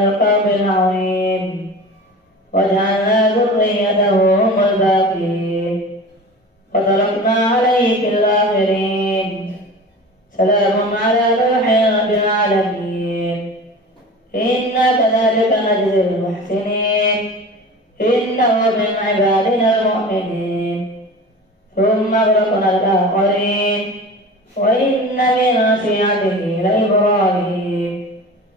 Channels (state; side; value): normal; both; correlation 0.36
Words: العظيم وجعلنا ذريته هم الباقين وتركنا عليه في الآخرين سلام على نوح رب العالمين إنا كذلك نجزي المحسنين إنه من عبادنا المؤمنين ثم أغرقنا الآخرين وإن من شيعته لإبراهيم